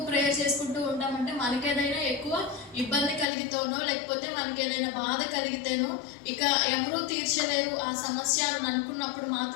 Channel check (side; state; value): right; drops out; at 3.2 s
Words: ప్రేయర్ చేసుకుంటూ ఉంటామంటే మనకేదైనా ఎక్కువ ఇబ్బంది కలిగితేనో లేకపోతే మనకి ఏదైనా బాధ కలిగితేనో ఇక ఎవరూ తీర్చలేరు ఆ సమస్య అని అనుకున్నప్పుడు